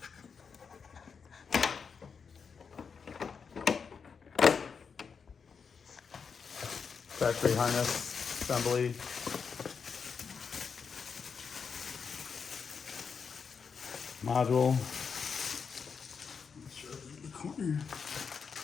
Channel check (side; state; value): right; quieter; 5.9 dB